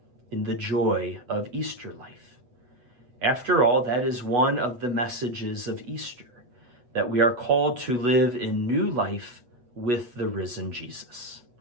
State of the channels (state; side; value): late; left; 8.2 ms